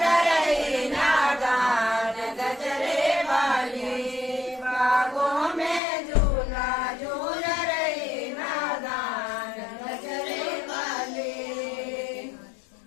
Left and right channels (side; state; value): right; drops out; at 5.8 s